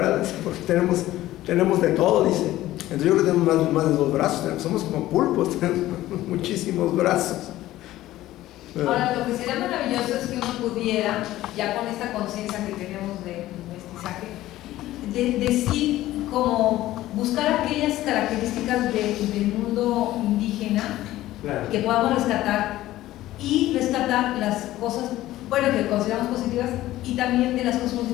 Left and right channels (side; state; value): right; quieter; 15.3 dB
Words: porque tenemos de todo, dice. Entonces yo creo que tenemos más de 2 brazos, somos como pulpos, tenemos muchísimos brazos. Ahora, lo que sería maravilloso es que uno pudiera, ya con esta conciencia que tenemos de mestizaje, decir como buscar aquellas características del mundo indígena, claro, que podamos rescatar y rescatar las cosas, bueno, que consideramos positivas y también de las cosas